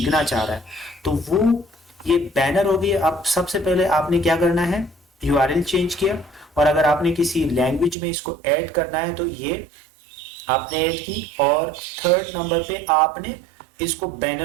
चाह रहा है। तो वो ये बैनर होगी। अब सबसे पहले आपने क्या करना है, यूआरएल चेंज किया, और अगर आपने किसी लैंग्वेज में इसको ऐड करना है तो ये आपने ऐड की, और थर्ड नंबर पे आपने इसको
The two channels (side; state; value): left; drops out; at 8.0 s